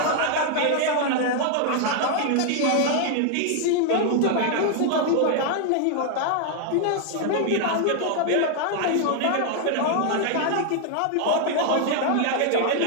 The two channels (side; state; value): both; different; correlation 0.00